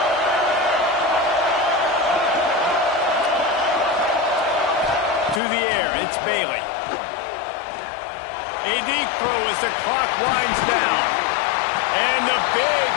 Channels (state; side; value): drops out; right; at 5.4 s